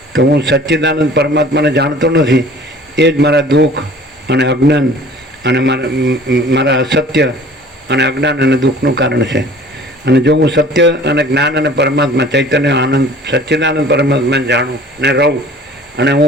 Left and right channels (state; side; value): normal; both; correlation 0.48